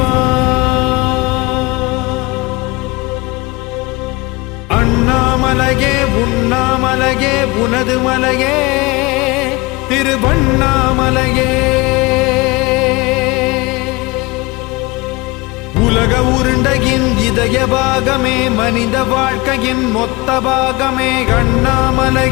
அண்ணாமலையே உண்ணாமலையே உனது மலையே திருவண்ணாமலையே உலக உருண்டையின் இதய பாகமே மனித வாழ்க்கையின் மொத்த பாகமே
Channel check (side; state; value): right; quieter; 24.0 dB